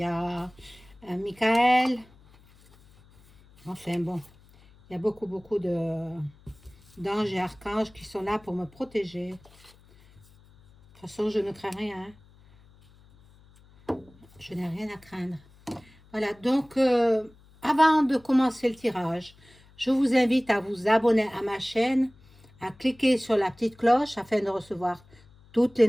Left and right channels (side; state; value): left; noise; hum, 27 dB below the sound